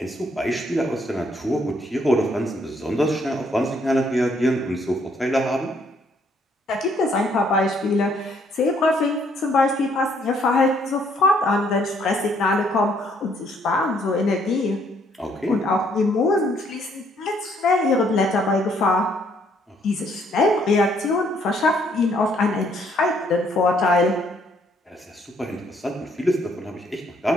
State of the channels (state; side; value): normal; both; correlation 0.67